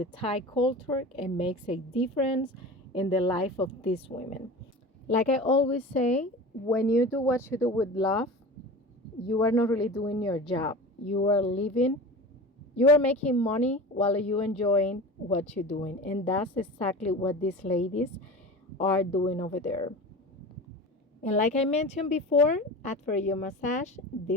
Thai culture and makes a difference in the life of these women. Like I always say, when you do what you do with love, you are not really doing your job. You are living, you are making money while you enjoying what you're doing. And that's exactly what these ladies are doing over there. And like I mentioned before, after your massage,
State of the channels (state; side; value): normal; both; correlation 0.33